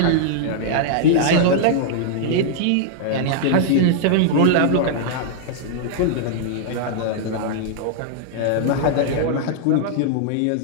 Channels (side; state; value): both; different; correlation -0.01